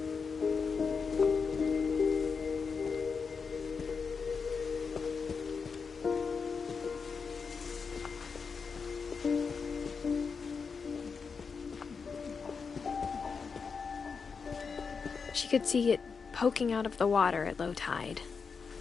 She could see it poking out of the water at low tide.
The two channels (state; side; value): quieter; right; 5.4 dB